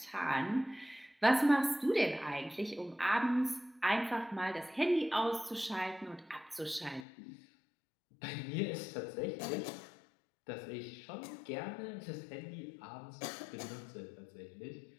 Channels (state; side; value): drops out; right; at 7.1 s